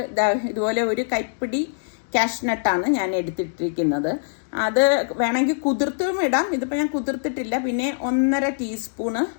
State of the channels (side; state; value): right; silent; digital silence